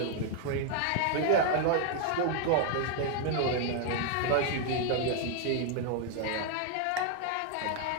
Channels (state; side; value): different; both; correlation 0.00